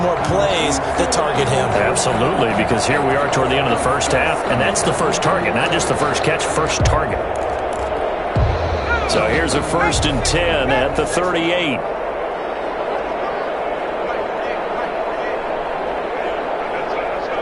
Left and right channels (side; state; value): both; identical; correlation 1.00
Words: plays that target him. Absolutely, because here we are toward the end of the first half, and that's the first target, not just the first catch, first target. So here's a 1st and 10 at the 38.